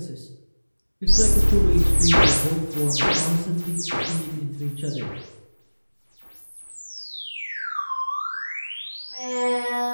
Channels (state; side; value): inverted; both; correlation -1.00